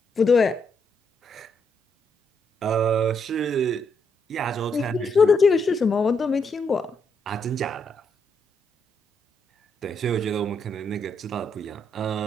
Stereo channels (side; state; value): both; normal; correlation 0.77